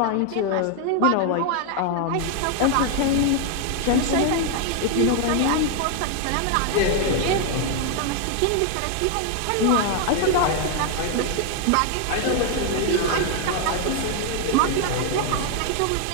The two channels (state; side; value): different; both; correlation 0.00